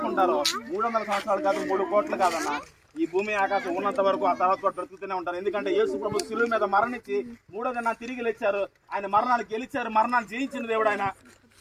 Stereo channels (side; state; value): both; identical; correlation 1.00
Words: 300 సంవత్సరాలు కాదు, 3 కోట్లు కాదన్న, ఈ భూమి ఆకాశం ఉన్నంత వరకు ఆ తర్వాత కూడా బ్రతుకుతూనే ఉంటారు. ఎందుకంటే యేసు ప్రభు శిలువ మీద మరణించి 3వ దినాన తిరిగి లేచారు. ఆయన మరణాన్ని గెలిచారు. మరణాన్ని జయించిన దేవుడు ఆయన.